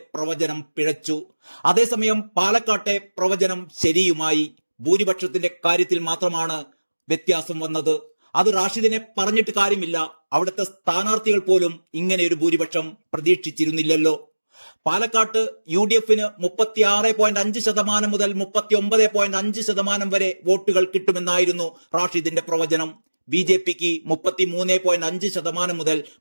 പ്രവചനം പിഴച്ചു. അതേസമയം പാലക്കാട്ടെ പ്രവചനം ശരിയുമായി. ഭൂരിപക്ഷത്തിന്റെ കാര്യത്തിൽ മാത്രമാണ് വ്യത്യാസം വന്നത്. അത് റാഷിദിനെ പറഞ്ഞിട്ട് കാര്യമില്ല. അവിടുത്തെ സ്ഥാനാർത്ഥികൾ പോലും ഇങ്ങനെ ഒരു ഭൂരിപക്ഷം പ്രതീക്ഷിച്ചിരുന്നില്ലല്ലോ. പാലക്കാട്ട് UDFന് 36.5% മുതൽ 39.5% വരെ വോട്ടുകൾ കിട്ടുമെന്നായിരുന്നു റാഷിദിന്റെ പ്രവചനം. BJPക്ക് 33.5% മുതൽ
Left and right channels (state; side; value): inverted; both; correlation -1.00